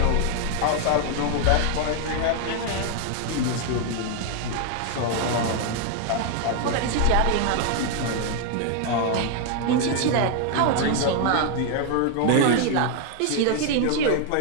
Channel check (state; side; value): different; both; correlation 0.00